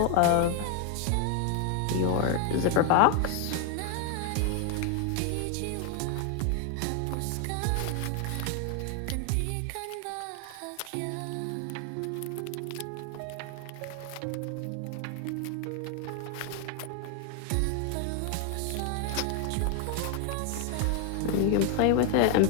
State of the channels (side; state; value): both; different; correlation 0.01